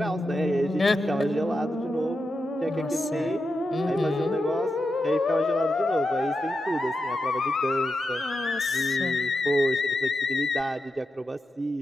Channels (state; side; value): normal; both; correlation 0.88